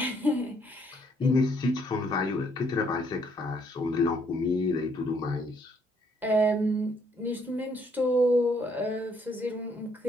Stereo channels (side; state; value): both; normal; correlation 0.68